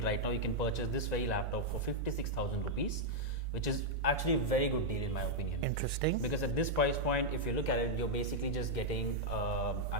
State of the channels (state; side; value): normal; both; correlation -0.03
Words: right now. You can purchase this very laptop for 56,000 rupees, which is actually a very good deal in my opinion. Interesting. Because at this price point, if you look at it, you're basically just getting,